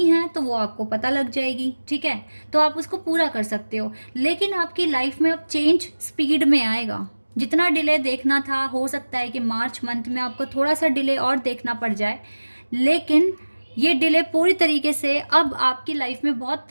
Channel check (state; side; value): inverted; both; correlation -1.00